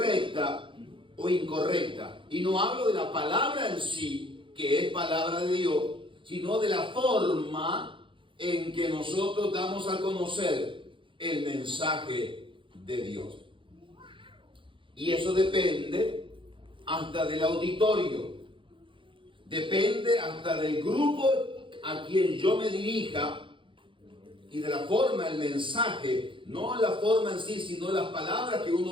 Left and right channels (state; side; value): late; left; 0.25 ms